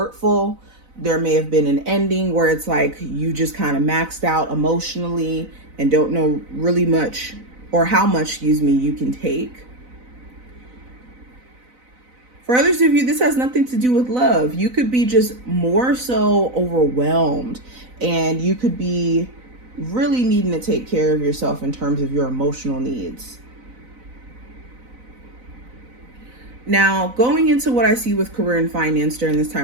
There may have been an ending where it's like you just kind of maxed out emotionally and don't know really much or how much, you can take. For others of you, this has nothing to do with love. You could be just more so overwhelmed, and you could be really needing to take care of yourself in terms of your emotional needs. Now, going into what I see with career and finance during this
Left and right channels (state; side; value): late; left; 4.0 ms